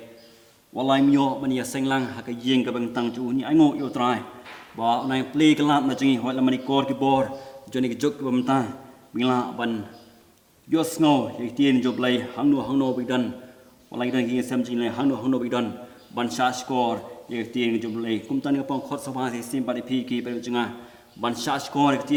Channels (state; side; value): identical; both; correlation 1.00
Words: walai myo ban ya seng lang ha ka yeng ka bang tang chu ni ai ngo yu trai ba nai play kala na jingi hoi la mani kor ki bor joni ki jok bam ta mila ban yo sngo ye ti ni job lai hang no bi dan walai dan ki sam jing lai hang no bi dan ban sha score ye ti ni job lai kum tan ni pong khot sa ba sai sin pari pi ki pari janga ban sha score ke ti